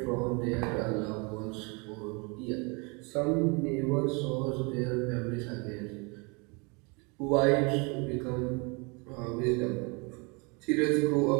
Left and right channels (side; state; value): left; quieter; 30.7 dB